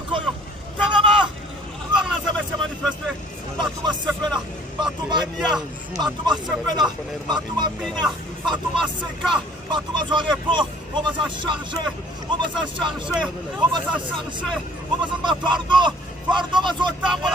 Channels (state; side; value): normal; both; correlation 0.55